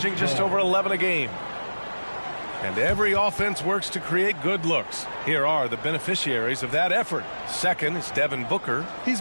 just over 11 a game. And every offense works to create good looks. Here are the beneficiaries of that effort. Second is Devin Booker.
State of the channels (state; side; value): inverted; both; correlation -1.00